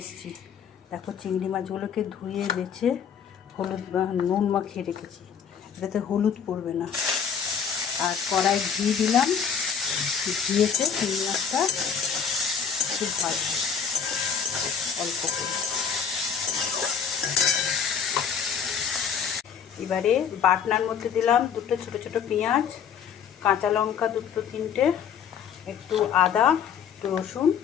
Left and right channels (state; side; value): quieter; right; 7.3 dB